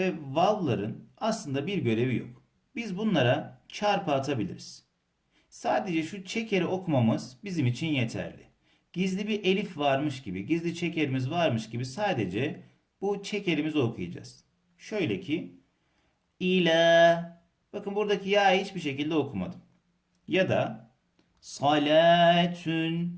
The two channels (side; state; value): both; identical; correlation 1.00